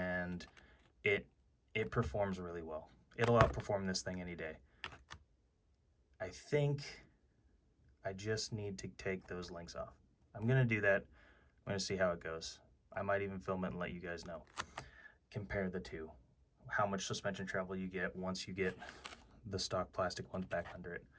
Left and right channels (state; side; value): identical; both; correlation 1.00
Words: it performs really well. It'll outperform this thing any day. I think I just need to take those links off. I'm gonna do that. I'm gonna see how it goes. I might even film it and let you guys know. Compare the two. How much suspension travel you get once you get the stock plastic ones back under it.